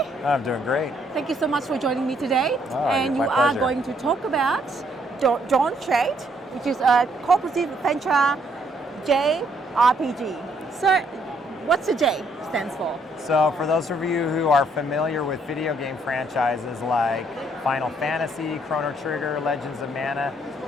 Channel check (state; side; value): normal; both; correlation 0.69